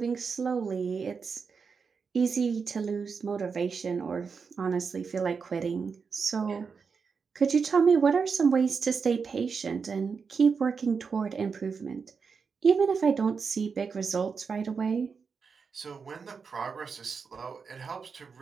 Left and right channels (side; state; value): left; quieter; 5.5 dB